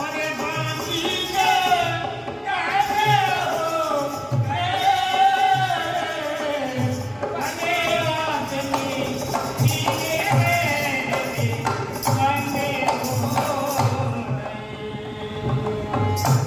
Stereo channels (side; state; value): both; identical; correlation 1.00